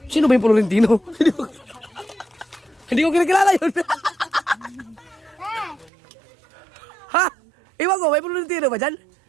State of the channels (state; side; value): drops out; left; at 5.9 s